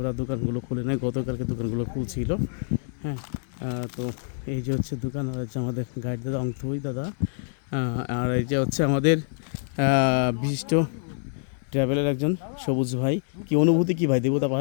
দোকানগুলো খুলে নেয়, গতকালকে দোকানগুলো খুলছিল। হ্যাঁ, তো এই যে হচ্ছে দোকান, আর হচ্ছে আমাদের গাইড দাদা অংথই দাদা, আর এই যে হচ্ছে আমাদের বিশিষ্ট ট্রাভেলের একজন সবুজ ভাই। কি অনুভূতি কি ভাই দেবতা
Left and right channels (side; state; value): right; silent; digital silence